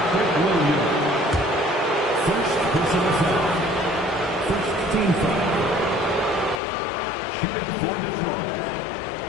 First personal foul. First team foul. Shooting for Detroit.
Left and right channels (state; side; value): drops out; right; at 6.6 s